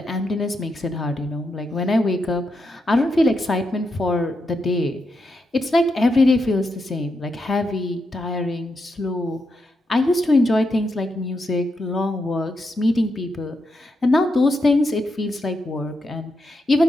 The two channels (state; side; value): normal; both; correlation 0.84